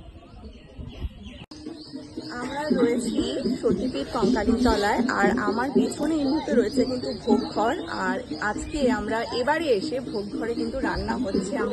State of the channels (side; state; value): both; identical; correlation 1.00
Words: আমরা রয়েছি সতীপীঠ কঙ্কালীতলায়, আর আমার পেছনে এই মুহূর্তে রয়েছে কিন্তু ভোগঘর। আর আজকে আমরা এবারে এসে ভোগঘরে কিন্তু রান্না হচ্ছে